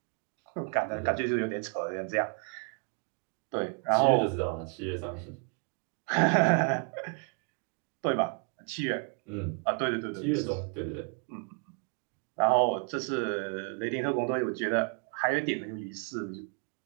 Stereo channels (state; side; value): quieter; left; 40.0 dB